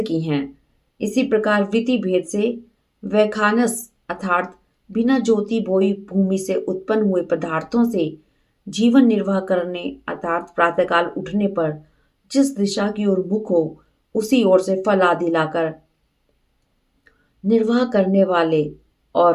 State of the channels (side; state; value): both; identical; correlation 1.00